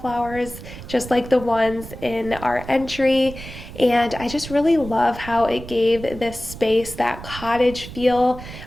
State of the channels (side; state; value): right; noise; rumble, 13 dB below the sound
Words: just like the ones in our entry. And I just really love how it gave this space that cottage feel.